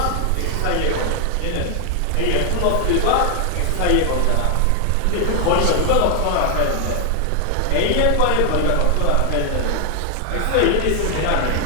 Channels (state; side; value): different; both; correlation 0.00